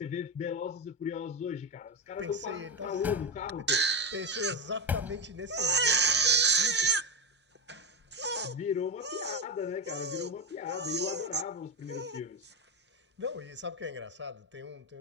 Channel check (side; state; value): both; normal; correlation 0.15